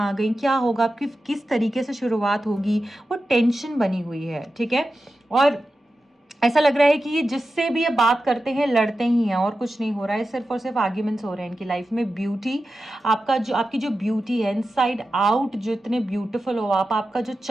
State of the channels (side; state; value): both; normal; correlation 0.92